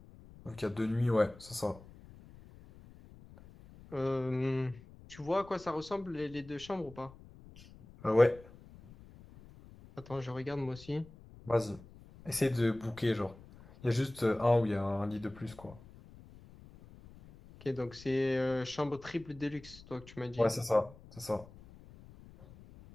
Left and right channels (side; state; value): left; noise; rumble, 20 dB below the sound